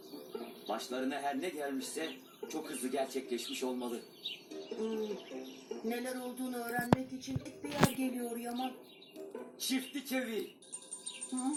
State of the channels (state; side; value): identical; both; correlation 1.00